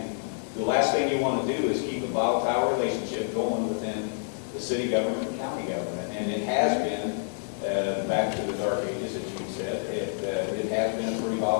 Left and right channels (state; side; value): silent; right; 59 dB below the other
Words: the last thing you want to do is keep a volatile relationship going within the city government and county government. And it has been, back to the dark ages, as you said, it has been a pretty